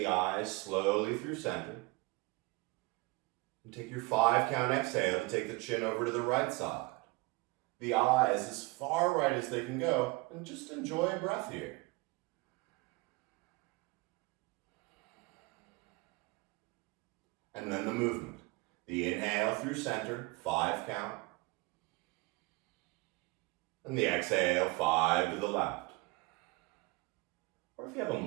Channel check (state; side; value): quieter; left; 24.1 dB